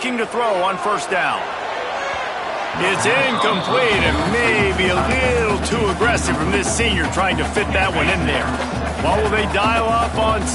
to throw on first down. It's incomplete and maybe a little too aggressive from this senior trying to fit that one in there. What will they dial up on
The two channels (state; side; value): identical; both; correlation 1.00